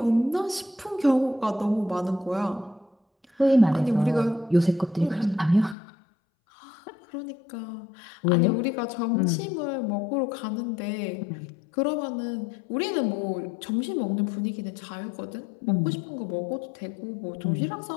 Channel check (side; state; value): right; drops out; at 5.8 s